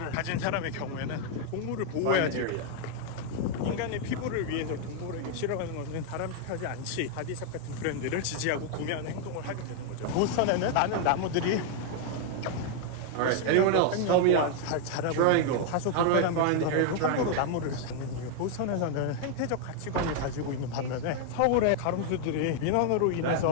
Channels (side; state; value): both; different; correlation 0.00